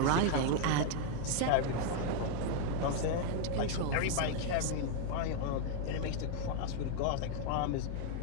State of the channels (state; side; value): different; both; correlation 0.00